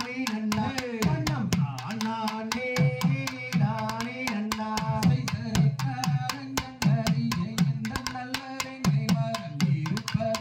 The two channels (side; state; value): both; identical; correlation 1.00